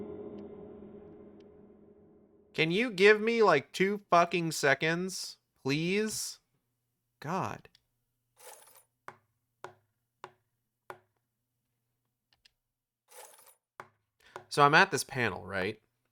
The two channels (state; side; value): identical; both; correlation 1.00